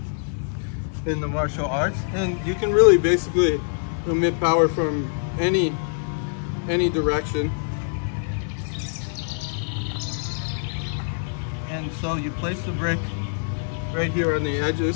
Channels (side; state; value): right; silent; 62 dB below the other